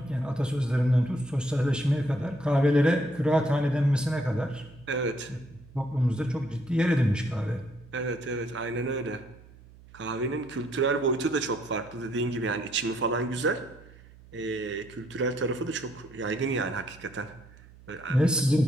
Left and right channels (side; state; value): right; noise; hum, 22 dB below the sound